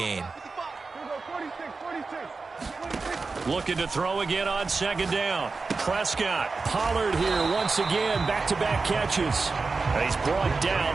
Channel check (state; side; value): quieter; left; 4.1 dB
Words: Looking to throw again on 2nd down. Prescott. Pollard here once again, back-to-back catches. He's brought